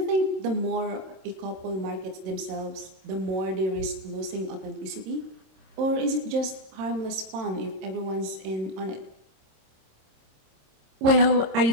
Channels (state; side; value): late; left; 27 ms